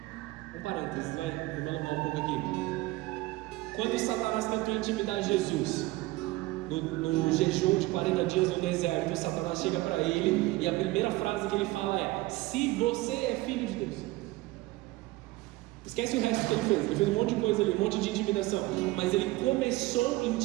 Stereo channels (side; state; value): left; quieter; 19.5 dB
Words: Um parênteses, vou me alongar um pouco aqui. Quando Satanás tentou intimidar Jesus no jejum de 40 dias no deserto, Satanás chega para ele e a primeira frase que ele fala é: se você é filho de Deus. Esquece o resto que ele fez. Ele fez um monte de coisa ali, um monte de intimidação, mas ele começou